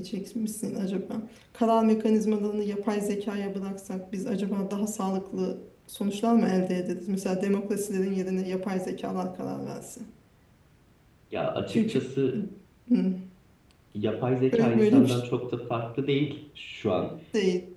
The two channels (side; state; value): both; identical; correlation 1.00